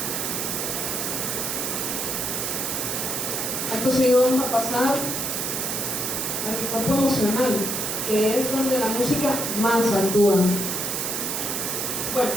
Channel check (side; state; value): right; noise; hiss, 1 dB below the sound